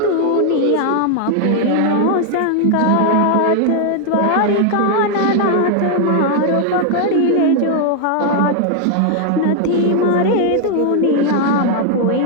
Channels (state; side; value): different; both; correlation 0.00